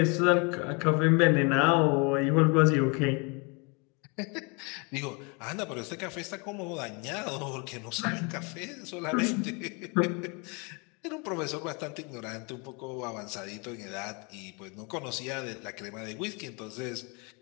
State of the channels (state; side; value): quieter; right; 31.6 dB